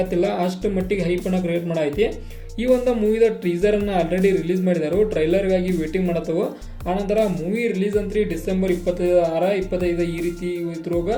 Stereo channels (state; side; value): identical; both; correlation 1.00